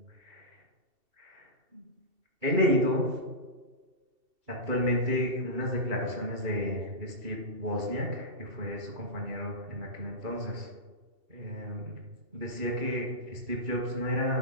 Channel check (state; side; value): late; left; 2.7 ms